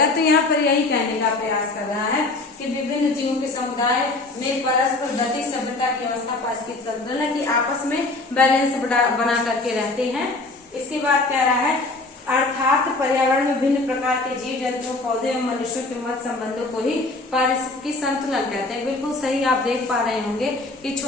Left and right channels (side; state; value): right; quieter; 3.2 dB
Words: तो यहाँ पर यही कहने का प्रयास कर रहा है कि विभिन्न जीवों के समुदाय में परस्पर गतिक सभ्यता की अवस्था पारिस्थितिकी संतुलन की आपस में बैलेंस बना करके रहते हैं। इसके बाद कह रहा है अर्थात पर्यावरण में विभिन्न प्रकार के जीव जंतुओं, पौधे एवं मनुष्यों के मध्य संबंधों को ही पारिस्थितिकी संतुलन कहते हैं। बिल्कुल सही। आप देख पा रहे होंगे कि